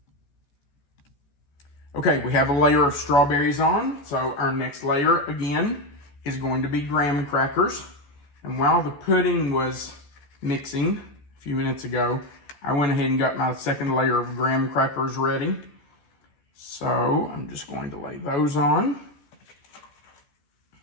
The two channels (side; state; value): right; late; 14 ms